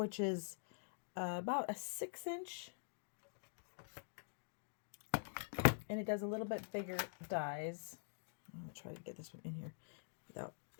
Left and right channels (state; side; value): silent; right; digital silence